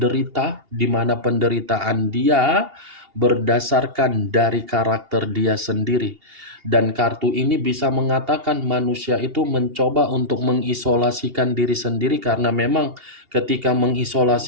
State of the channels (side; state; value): left; late; 2.8 ms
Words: di mana penderitaan dia berdasarkan dari karakter dia sendiri. Dan kartu ini bisa mengatakan manusia itu mencoba untuk mengisolasikan diri sendiri karena memang ketika